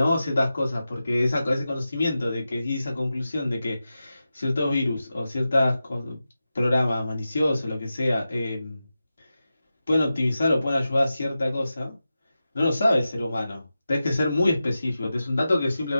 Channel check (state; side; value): inverted; both; correlation -0.92